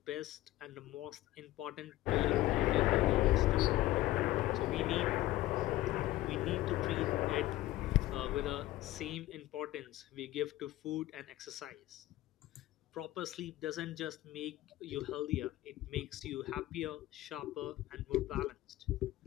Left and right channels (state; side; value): quieter; right; 16.0 dB